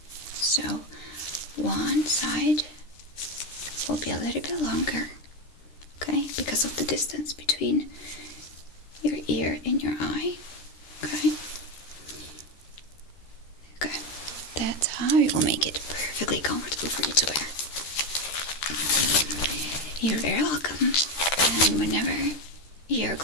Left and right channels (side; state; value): right; late; 13 ms